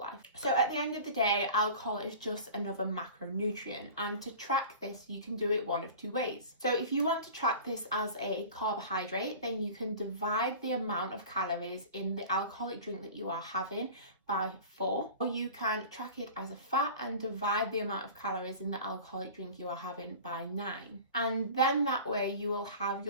So at the end of the day, alcohol is just another macronutrient, and to track this you can do it one of two ways. So if you want to track this as a carbohydrate, then you can divide the amount of calories in the alcoholic drink that you are having by 4, or you can track it as a fat and divide the amount of calories in the alcoholic drink you are having by 9. And then that way you will have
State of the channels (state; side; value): inverted; both; correlation -0.39